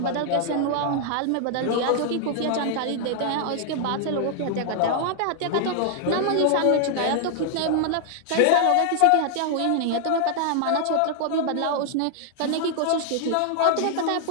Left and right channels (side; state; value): both; different; correlation 0.00